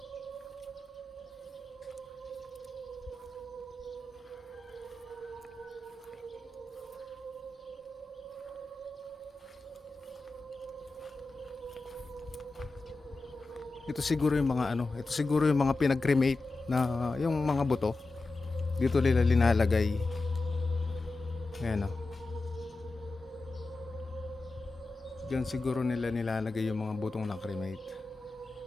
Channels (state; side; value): quieter; right; 3.3 dB